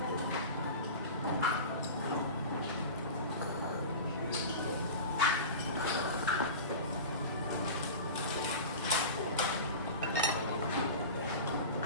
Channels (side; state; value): both; inverted; correlation -0.31